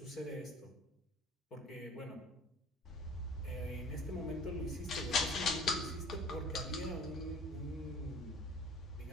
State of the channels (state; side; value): normal; both; correlation 0.48